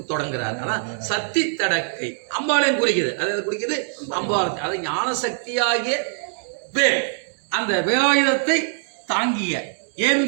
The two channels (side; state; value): left; silent; digital silence